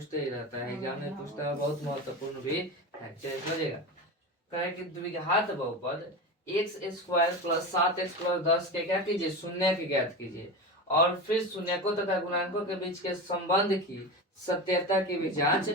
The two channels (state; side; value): normal; both; correlation 0.24